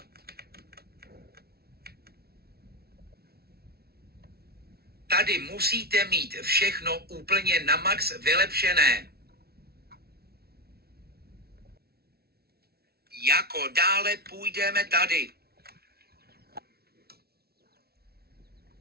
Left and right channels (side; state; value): left; late; 0.45 ms